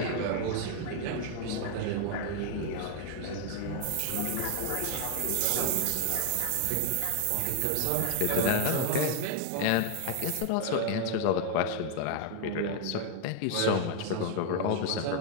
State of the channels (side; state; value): both; different; correlation 0.00